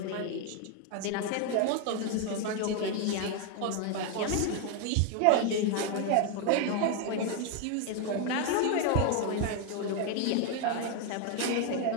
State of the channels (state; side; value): different; both; correlation 0.01